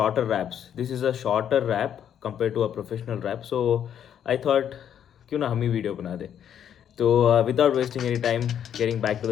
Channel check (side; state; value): right; quieter; 9.3 dB